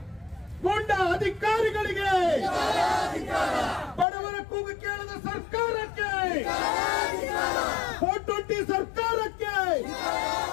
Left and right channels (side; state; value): right; drops out; at 4.0 s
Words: ಗೂಂಡ ಅಧಿಕಾರಿಗಳಿಗೆ, ಬಡವರ ಕೂಗು ಕೇಳದ ಸರ್ಕಾರಕ್ಕೆ, 420 ಸರ್ಕಾರಕ್ಕೆ,